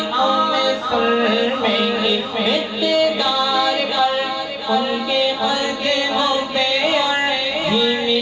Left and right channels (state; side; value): identical; both; correlation 1.00